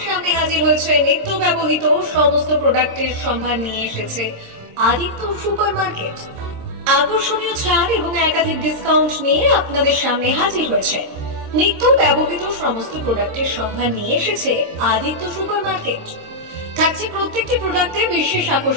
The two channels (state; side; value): late; left; 26 ms